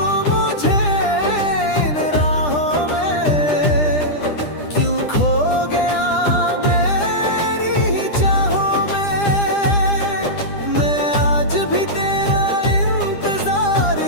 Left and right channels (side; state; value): right; late; 10 ms